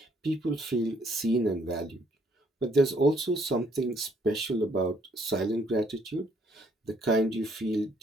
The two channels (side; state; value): both; normal; correlation 0.67